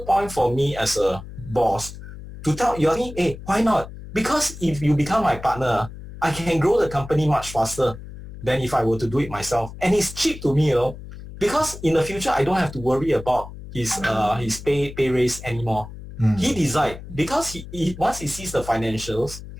for me as a boss to tell you, hey, why not? Because if you become my partner, I can grow the company much faster than if I were to do it myself. And it's cheap to me, because in the future, I don't have to worry about his pay raise anymore. He decide, because he once he sees the financials,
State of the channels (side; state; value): left; noise; hum, 13 dB below the sound